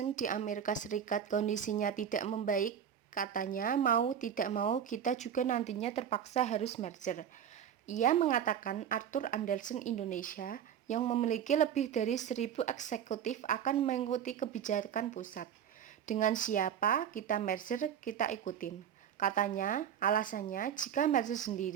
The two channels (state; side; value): quieter; left; 8.9 dB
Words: di Amerika Serikat kondisinya tidak membaik, katanya mau tidak mau kita juga nantinya terpaksa harus merger. Ia mengatakan Arthur Andersen Indonesia yang memiliki lebih dari 1.000 eksekutif akan mengikuti kebijakan pusat. Dengan siapa kita merger, kita ikutin. Katanya, alasannya jika merger